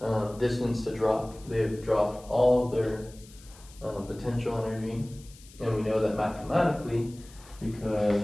distance to drop. They've dropped all of their potential energy, and we know that mathematically, because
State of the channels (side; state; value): left; noise; hiss, 23 dB below the sound